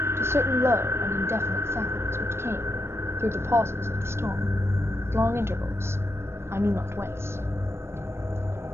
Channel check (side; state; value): left; late; 0.12 ms